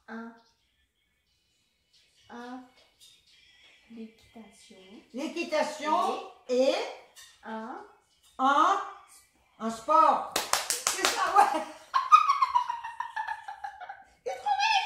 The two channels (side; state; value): both; identical; correlation 1.00